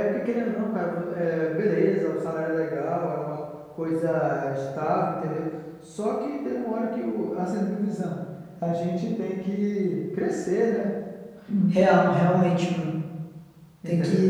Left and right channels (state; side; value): identical; both; correlation 1.00